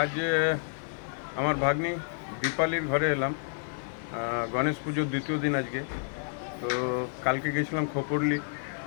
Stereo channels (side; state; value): right; silent; digital silence